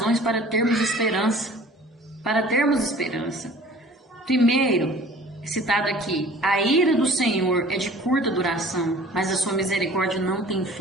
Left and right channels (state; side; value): normal; both; correlation 0.47